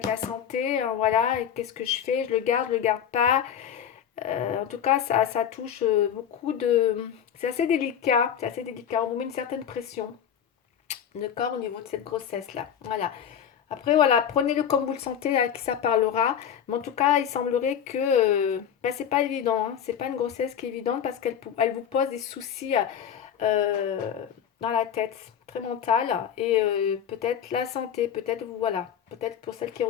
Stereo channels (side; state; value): right; quieter; 8.8 dB